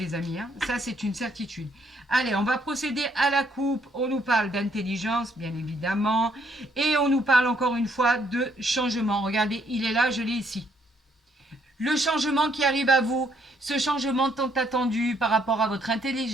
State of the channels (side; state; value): both; normal; correlation 0.70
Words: amis. Ça, c'est une certitude. Allez, on va procéder à la coupe. On nous parle d'intelligence, bien évidemment. Et on nous parle encore une fois de changement. Regardez, il est là, je l'ai ici. Le changement qui arrive à vous, ce changement tant attendu par rapport à votre